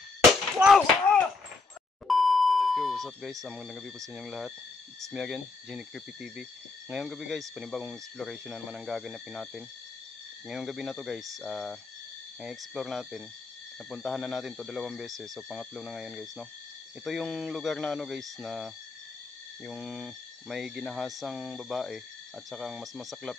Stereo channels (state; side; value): quieter; right; 3.9 dB